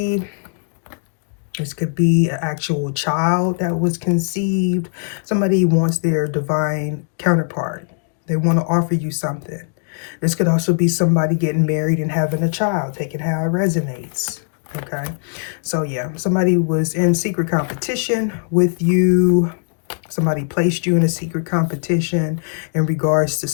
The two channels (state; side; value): silent; right; digital silence